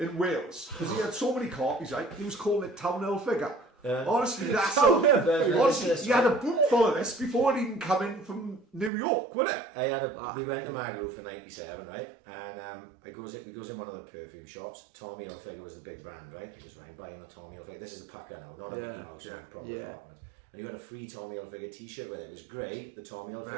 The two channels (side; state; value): left; drops out; at 8.9 s